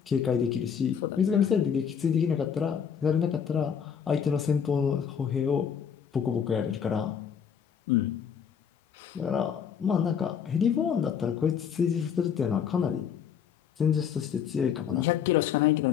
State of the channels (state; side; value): quieter; right; 7.6 dB